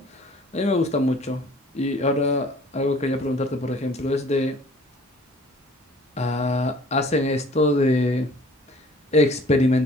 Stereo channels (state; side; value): normal; both; correlation 0.52